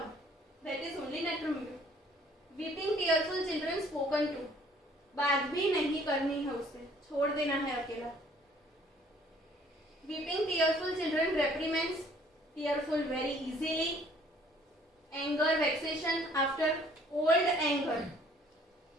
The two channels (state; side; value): normal; both; correlation 0.58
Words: that is only natrum. Weeping tearful children spoken to. बात भी नहीं करनी है उससे, छोड़ देना है अकेला. Weeping tearful children reprimands tearful very easily. Anger, vexation after old anger.